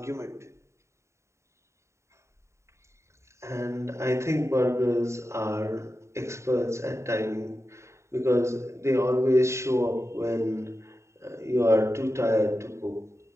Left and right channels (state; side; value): late; left; 0.14 ms